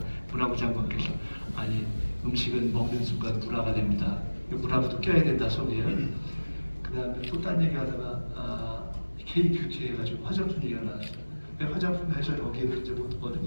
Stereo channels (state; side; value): inverted; both; correlation -1.00